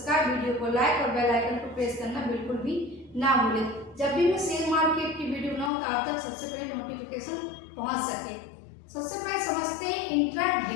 वीडियो को लाइक और बेल आइकन को प्रेस करना बिल्कुल भी ना भूलें। जब भी मैं शेयर मार्केट की वीडियो बनाऊँ तो आप तक सबसे पहले नोटिफिकेशन पहुँच सके। सबसे पहले समझते हैं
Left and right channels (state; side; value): drops out; right; at 5.7 s